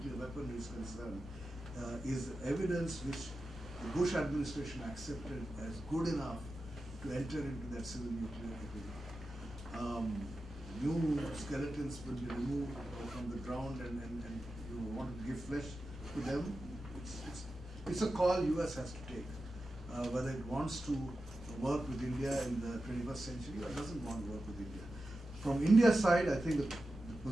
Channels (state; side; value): normal; both; correlation 0.92